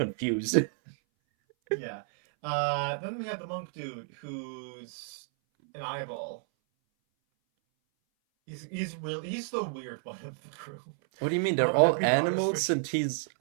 yeah. Then we have the monk dude who's an eyeball. He's the weird one of the group. What do you mean? They're I'm gonna all be honest animals with you. and he's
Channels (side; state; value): left; silent; 57 dB below the other